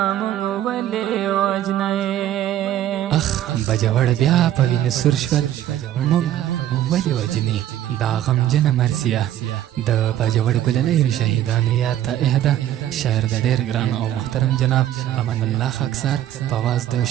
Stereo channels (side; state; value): left; quieter; 12.3 dB